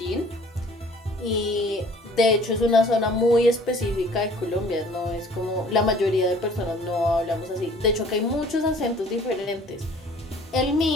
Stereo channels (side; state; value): both; normal; correlation 0.52